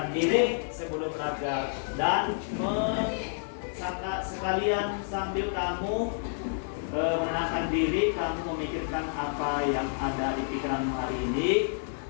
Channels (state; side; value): silent; right; digital silence